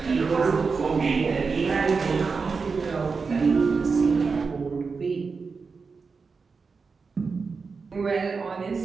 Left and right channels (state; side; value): quieter; left; 4.8 dB